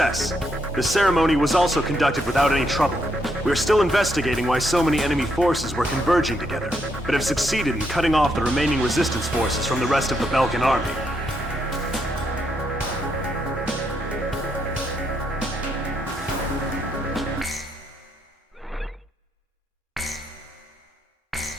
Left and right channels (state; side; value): normal; both; correlation 0.77